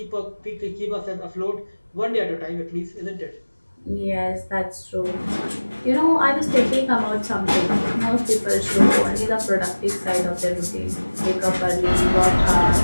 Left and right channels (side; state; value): both; inverted; correlation -1.00